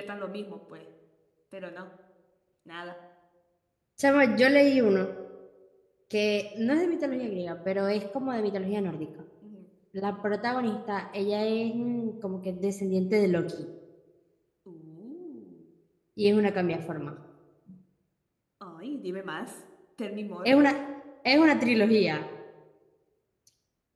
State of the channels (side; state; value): both; identical; correlation 1.00